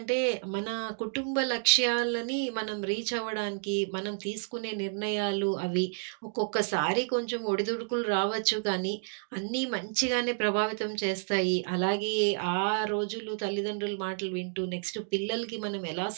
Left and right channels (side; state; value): left; silent; digital silence